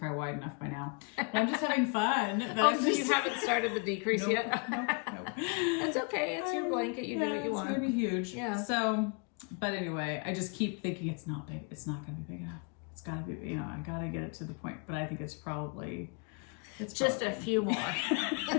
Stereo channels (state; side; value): quieter; right; 34.7 dB